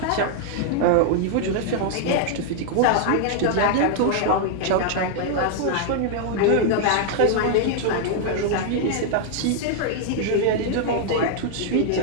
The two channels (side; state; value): both; different; correlation 0.00